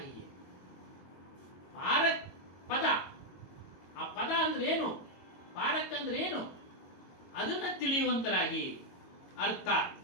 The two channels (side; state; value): right; late; 22 ms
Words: ಪಾರಕ್ ಪದ, ಆ ಪದ ಅಂದ್ರೆ ಏನು, ಪಾರಕ್ ಅಂದ್ರೆ ಏನು, ಅದನ್ನ ತಿಳಿಯುವಂತರಾಗಿ. ಅರ್ಥಾತ್